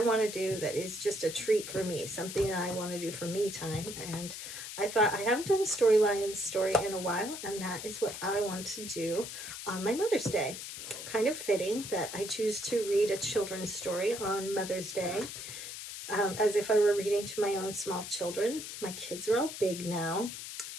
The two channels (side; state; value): left; noise; hiss, 9 dB below the sound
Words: want to do that is just a treat for me, something that I want to do for me time. And I thought I haven't done a Storylines story in a while, and that is what I want to do on my Mother's Day. Kind of fitting that I choose to read a children's story on Mother's Day, as if I were reading to my own small children. My kids are all big now.